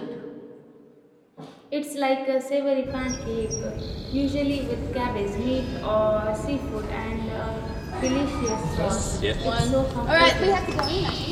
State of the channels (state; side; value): identical; both; correlation 1.00